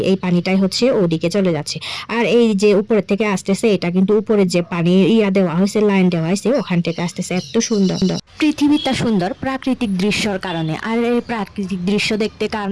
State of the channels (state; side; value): identical; both; correlation 1.00